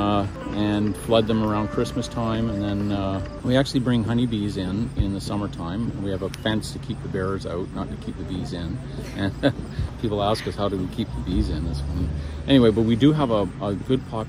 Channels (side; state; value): both; identical; correlation 1.00